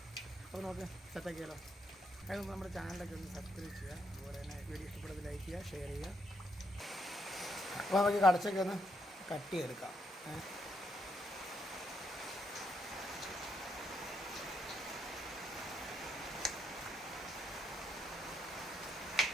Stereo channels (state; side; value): normal; both; correlation 0.76